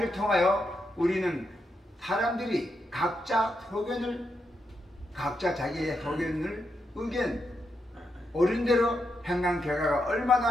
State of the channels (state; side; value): normal; both; correlation 0.83